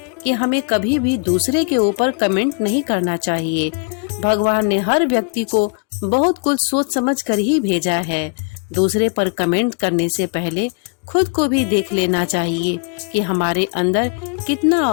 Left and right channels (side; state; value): right; quieter; 37.8 dB